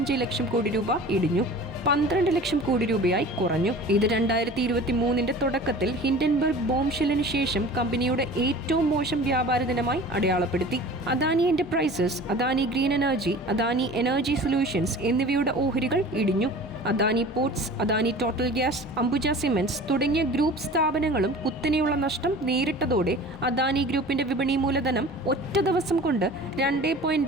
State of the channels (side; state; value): both; normal; correlation 0.41